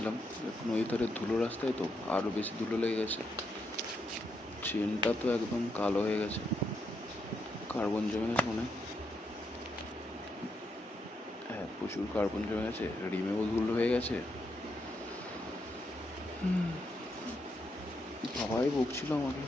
নদীর ধারে ধুলো রাস্তায় তো আরও বেশি ধুলো লেগে গেছে। চেনটা তো একদম কালো হয়ে গেছে, কার্বন জমে গেছে মনে হয়। হ্যাঁ, প্রচুর কার্বন জমে গেছে, রিমেও ধুলো হয়ে গেছে। বাবাই বকছিল আমাকে,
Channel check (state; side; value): normal; both; correlation 0.80